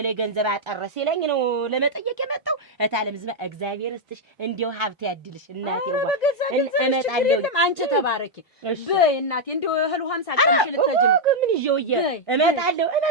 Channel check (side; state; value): both; normal; correlation -0.01